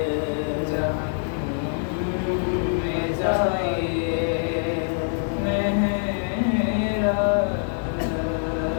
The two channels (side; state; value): right; silent; 62 dB below the other